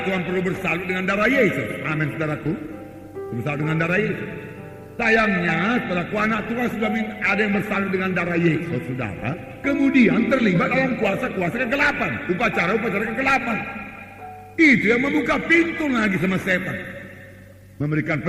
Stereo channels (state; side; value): identical; both; correlation 1.00